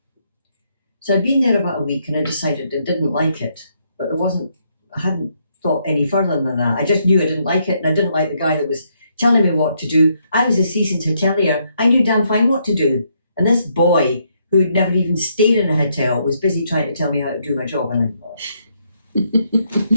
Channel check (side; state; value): both; inverted; correlation -0.75